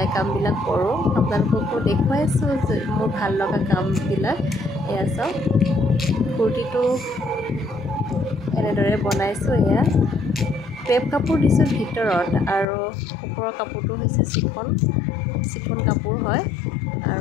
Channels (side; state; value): right; drops out; at 12.7 s